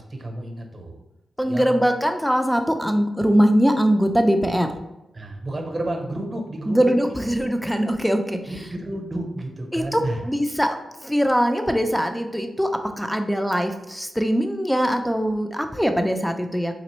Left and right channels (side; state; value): both; normal; correlation 0.97